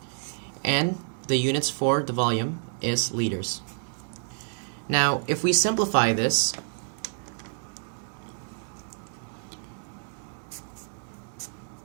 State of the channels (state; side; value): silent; left; digital silence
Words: And the units for the volume is liters. Now, if we simplify this,